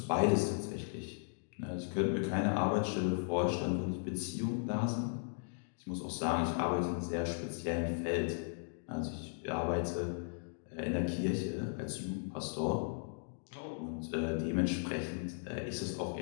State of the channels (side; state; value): right; silent; digital silence